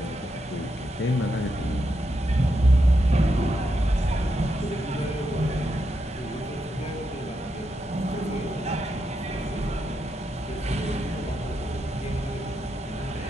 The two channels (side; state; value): both; normal; correlation 0.83